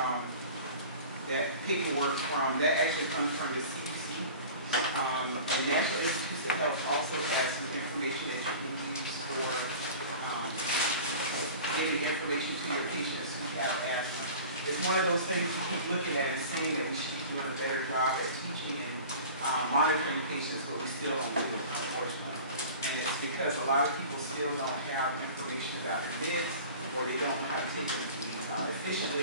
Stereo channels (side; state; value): both; inverted; correlation -0.39